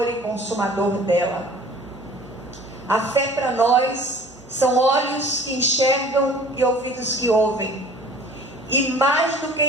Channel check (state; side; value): normal; both; correlation 0.48